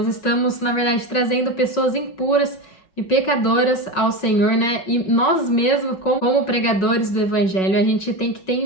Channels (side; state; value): right; late; 5.4 ms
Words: estamos, na verdade, trazendo pessoas impuras e pecadoras ao Senhor, né? E nós mesmos, como pregadores do evangelho, a gente tem que ter